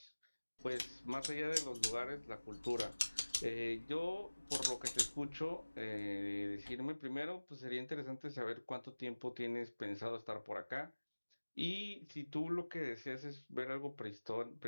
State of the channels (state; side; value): inverted; both; correlation -1.00